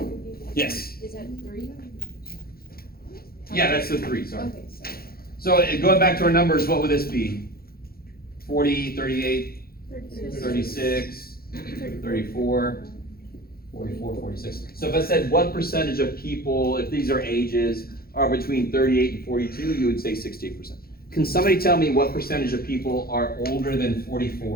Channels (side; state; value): right; late; 0.44 ms